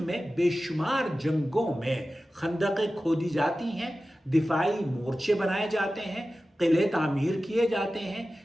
بے شمار جنگوں میں خندقیں کھودی جاتی ہیں، دفاعی مورچے بنائے جاتے ہیں، قلعے تعمیر کیے جاتے ہیں۔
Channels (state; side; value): normal; both; correlation 0.95